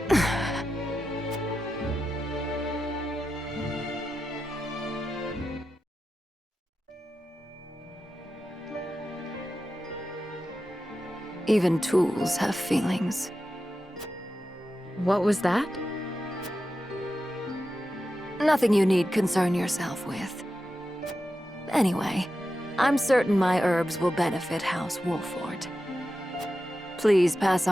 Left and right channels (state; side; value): normal; both; correlation 0.91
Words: Even tools have feelings. What was that? Nothing you need concern yourself with. Anyway, I'm certain my herbs will benefit House Wolford. Please pass